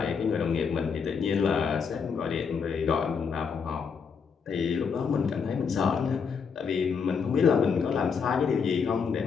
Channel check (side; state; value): right; quieter; 6.0 dB